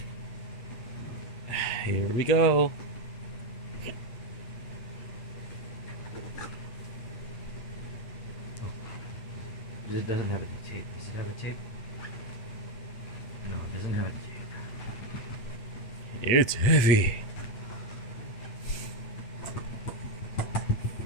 Here we go. Oh, it doesn't have any tape. Does it have a tape? No, it doesn't have a tape. It's heavy.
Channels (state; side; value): late; right; 8.7 ms